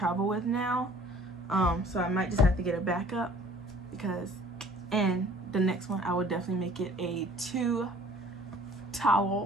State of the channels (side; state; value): both; normal; correlation 0.52